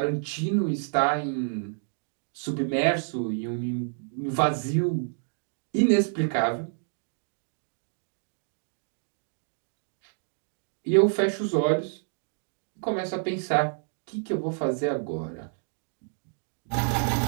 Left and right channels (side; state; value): left; silent; digital silence